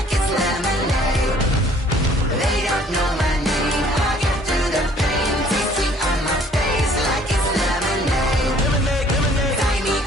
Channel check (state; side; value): normal; both; correlation 0.57